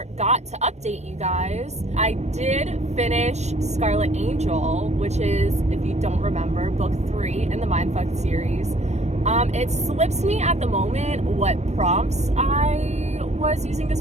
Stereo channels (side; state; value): left; late; 0.32 ms